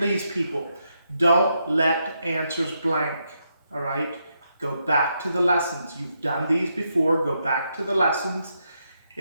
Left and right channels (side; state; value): both; inverted; correlation -0.81